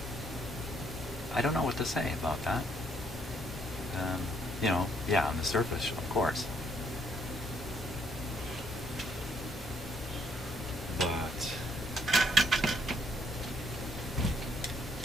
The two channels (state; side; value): normal; both; correlation 0.69